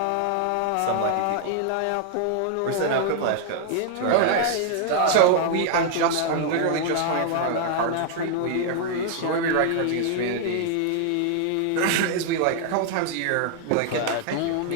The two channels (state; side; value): different; both; correlation 0.00